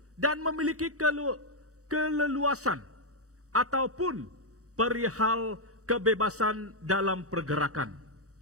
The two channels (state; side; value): late; left; 0.65 ms